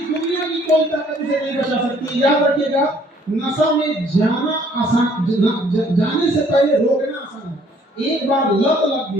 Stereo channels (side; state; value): both; normal; correlation 0.60